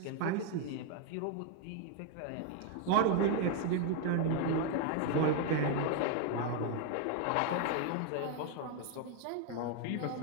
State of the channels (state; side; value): different; both; correlation 0.01